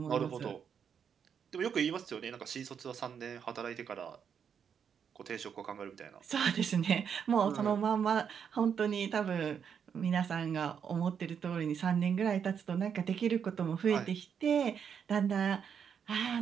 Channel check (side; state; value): left; quieter; 7.4 dB